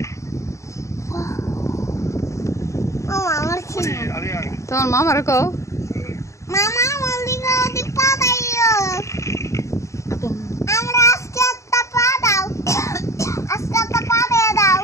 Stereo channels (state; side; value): late; right; 0.14 ms